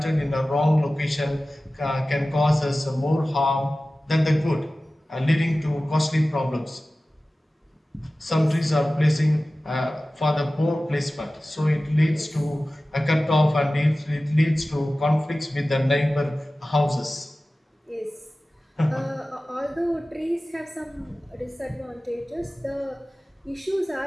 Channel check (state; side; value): normal; both; correlation 0.96